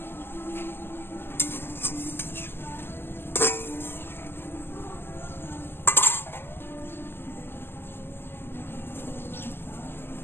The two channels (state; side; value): late; right; 0.10 ms